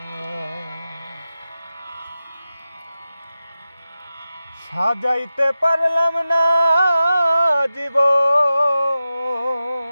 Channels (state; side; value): inverted; both; correlation -0.93